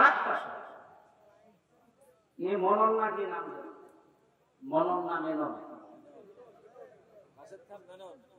মনন না, কি নাম, মনন না মেনন,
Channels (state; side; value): identical; both; correlation 1.00